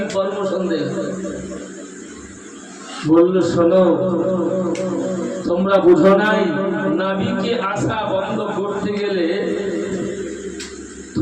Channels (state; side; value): identical; both; correlation 1.00